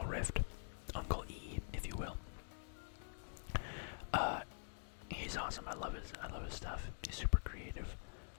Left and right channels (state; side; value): silent; right; digital silence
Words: Rift. Uncle E, if you will. He's awesome. I love his stuff. He's super creative.